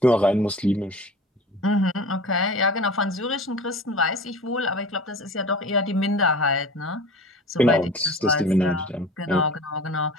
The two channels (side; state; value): both; normal; correlation 0.38